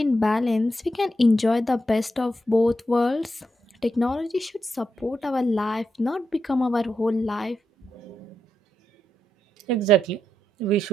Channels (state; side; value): normal; both; correlation 0.84